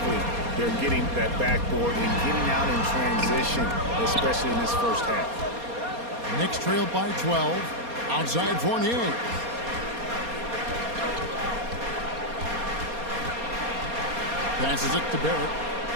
they're getting that backboard and getting out in transition, especially in this first half. Knicks trail by 12. Outside Fournier. Passes it to Barrett.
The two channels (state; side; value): late; left; 4.2 ms